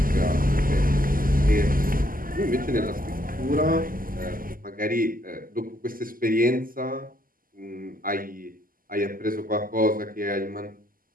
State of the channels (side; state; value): left; late; 0.41 ms